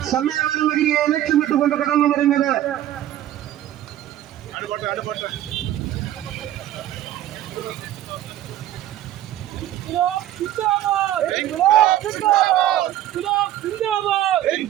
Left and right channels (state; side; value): quieter; left; 12.9 dB